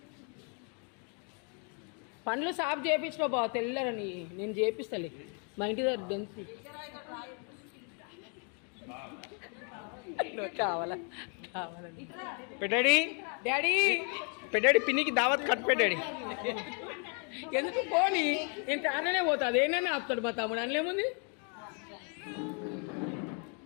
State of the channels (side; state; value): right; quieter; 39.5 dB